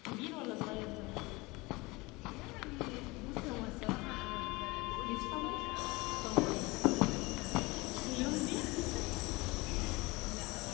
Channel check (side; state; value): right; quieter; 23.6 dB